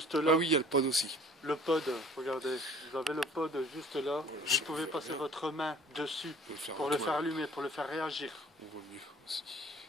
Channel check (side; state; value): both; normal; correlation 0.51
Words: là. Ah oui, il y a le pod aussi. Le pod, regardez, vous avez le pod juste là. Je Vous pouvez passer votre main dessus faire pour le faire allumer, pour le faire réagir. On voit mieux aussi.